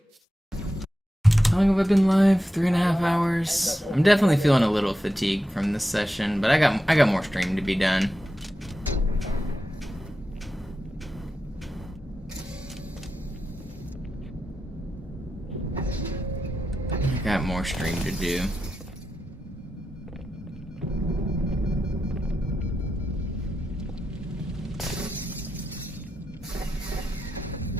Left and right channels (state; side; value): normal; both; correlation 0.90